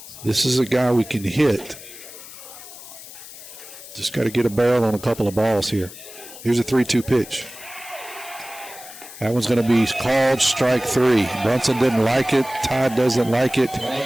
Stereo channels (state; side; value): noise; left; hiss, 16 dB below the sound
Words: this is a guy we can hit. Just got to get a barrel on a couple of balls here. Here's a 3-2 pitch. That one's going to be called strike 3. Brunson didn't like it. Tide doesn't like it.